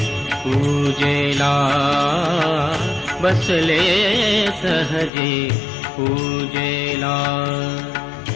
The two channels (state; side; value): drops out; right; at 5.1 s